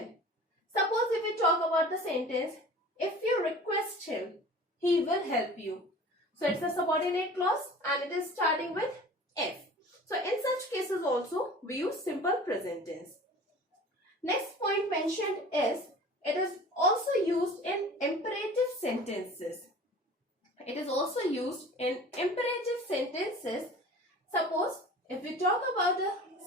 Suppose if we talk about the sentence, if you request him, he will help you. So it's a subordinate clause and it is starting with if. So in such cases also we use simple present tense. Next point mentioned is it is also used in imperative sentences. It is also used in imperative sentences. Suppose if we talk about a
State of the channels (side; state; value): both; normal; correlation 0.42